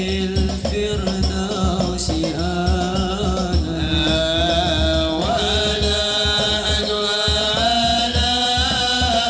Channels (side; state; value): both; identical; correlation 1.00